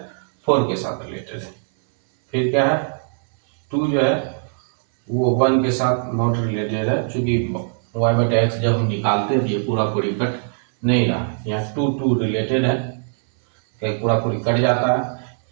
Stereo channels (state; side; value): silent; left; 63 dB below the other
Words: 4 के साथ रिलेटेड है। फिर क्या है 2 जो है वो 1 के साथ नॉट रिलेटेड है, चूंकि y बटे x जब हम निकालते थे पूरा पूरी कट नहीं रहा। यहाँ 2 रिलेटेड है, कहीं पूरा पूरी कट जाता है।